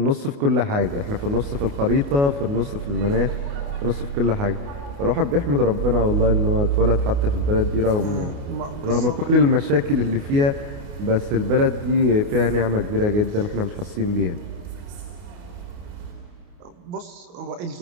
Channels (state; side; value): late; left; 29 ms